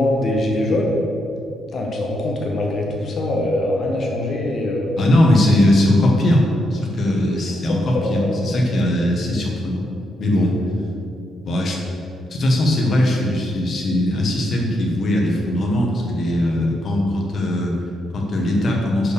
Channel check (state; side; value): normal; both; correlation 0.81